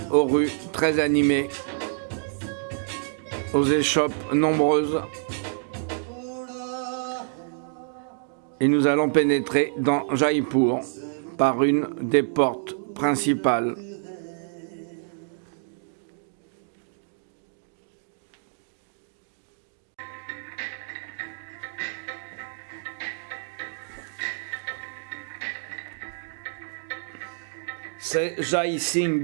aux rues très animées, aux échoppes nombreuses. Et nous allons pénétrer dans Jaipur par une des portes principales. C'est Jai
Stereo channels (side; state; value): left; silent; digital silence